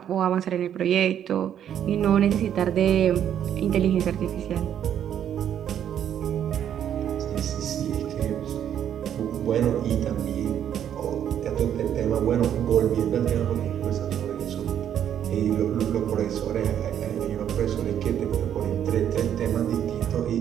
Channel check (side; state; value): left; quieter; 9.8 dB